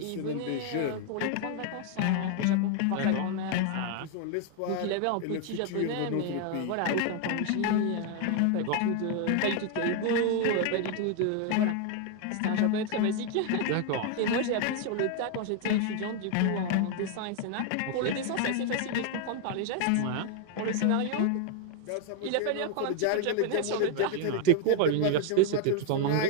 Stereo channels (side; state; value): both; different; correlation 0.01